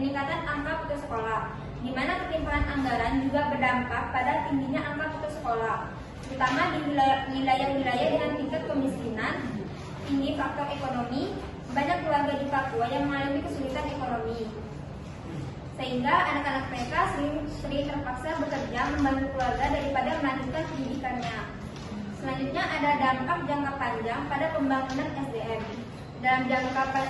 angka putus sekolah, di mana ketimpangan anggaran juga berdampak pada tingginya angka putus sekolah, terutama di wilayah-wilayah dengan tingkat kemiskinan tinggi faktor ekonomi. Banyak keluarga di Papua yang mengalami kesulitan ekonomi, sehingga anak-anak mereka sering terpaksa bekerja membantu keluarga daripada melanjutkan pendidikannya. Selanjutnya ada dampak jangka panjang pada pembangunan SDM.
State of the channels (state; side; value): identical; both; correlation 1.00